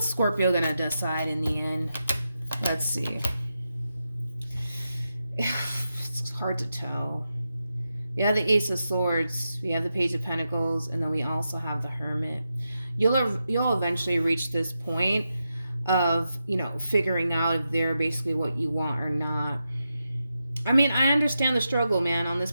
Scorpio going to decide in the end? Let's see. It's hard to tell. We have the Ace of Swords, we have the Page of Pentacles, and then we also have the Hermit. You'll eventually reach this point of, figuring out if they're basically what you want or not. I mean, I understand the struggle, man, on this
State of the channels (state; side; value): inverted; both; correlation -0.88